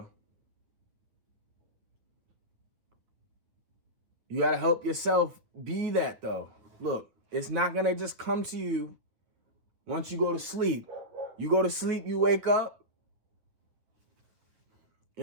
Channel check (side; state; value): left; late; 9.6 ms